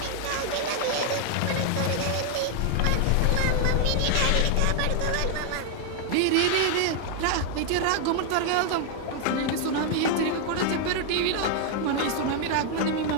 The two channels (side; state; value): both; different; correlation 0.00